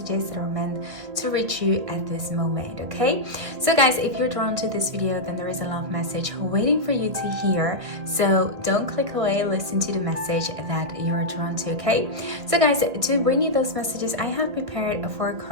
that are meant to reach you at this moment, okay? So guys, if you're drawn to this video, then there is a love message waiting for you to hear. So don't click away, listen to the message that you're drawn to, okay? So guys, to bring you those messages, I have prepared 4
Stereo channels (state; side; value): late; left; 1.6 ms